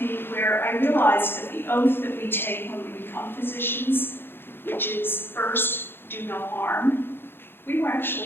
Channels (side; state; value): right; late; 0.10 ms